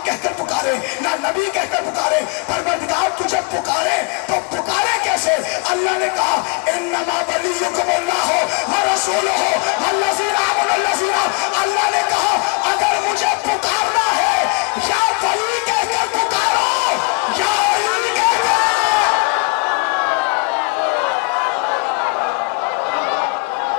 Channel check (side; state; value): right; quieter; 32.2 dB